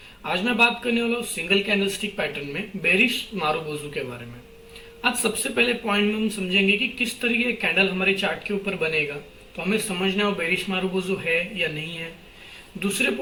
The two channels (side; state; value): both; identical; correlation 1.00